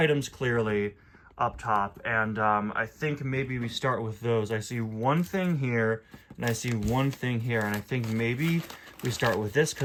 clearly up top, and I think maybe we start with those. I see one thing here, and I see one thing here, and I think maybe we start with this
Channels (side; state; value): both; identical; correlation 1.00